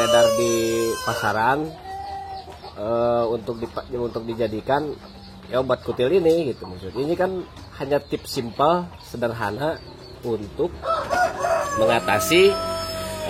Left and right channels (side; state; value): both; identical; correlation 1.00